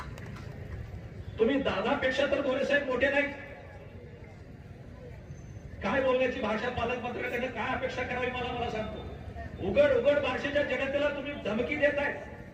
तुम्ही दादापेक्षा तर गोरेसाहेब मोठे नाही. काय बोलण्याची भाषा पालकमंत्र्यांकडे काय अपेक्षा करावी मला सांगतो. उघड उघड बार्शीच्या जनतेला तुम्ही धमकी देताय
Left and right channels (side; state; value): both; identical; correlation 1.00